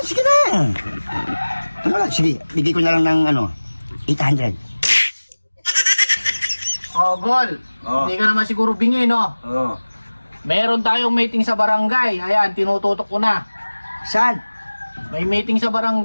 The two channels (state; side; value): inverted; both; correlation -1.00